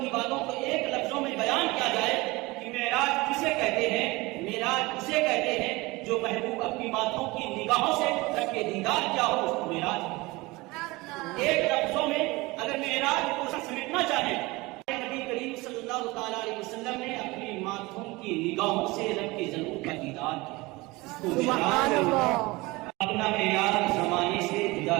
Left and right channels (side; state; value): left; quieter; 22.5 dB